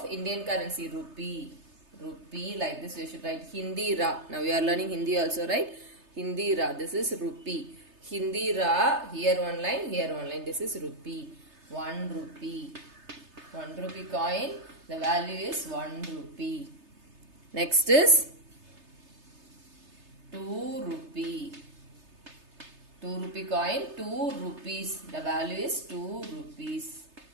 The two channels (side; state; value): left; late; 3.3 ms